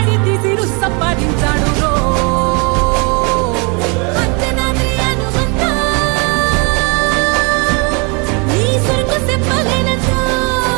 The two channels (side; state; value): left; quieter; 32.8 dB